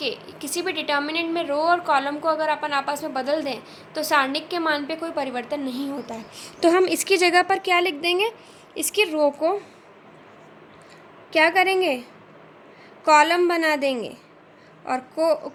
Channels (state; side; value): identical; both; correlation 1.00